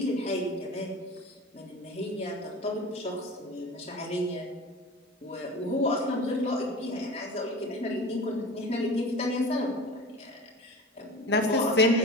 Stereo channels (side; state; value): both; normal; correlation 0.35